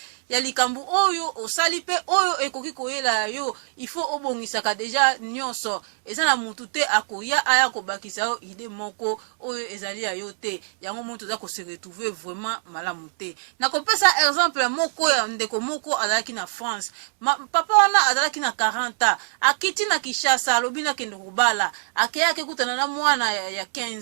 ya likambu oyo osali pe oyo ekoki koyela yo il faut obongisaka deja nyonso eza na mutu te akoya aya kobakisa yo ide moko oyo ezali ya yo te yango moto za ko se retrouver vraiment malamu te na kopesa exemple moko ya ndeko moko azalaki na France papa wana azalaki na 40 akiti na Kinshasa alobi na kende kobala akeyake kutana na mwana ya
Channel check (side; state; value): left; silent; 63 dB below the other